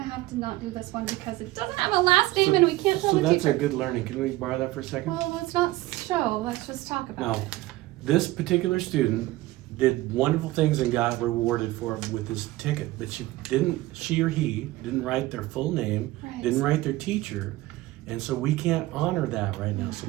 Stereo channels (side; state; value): left; quieter; 18.0 dB